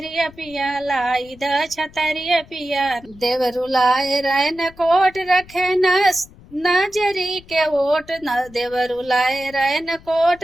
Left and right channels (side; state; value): left; noise; rumble, 23 dB below the sound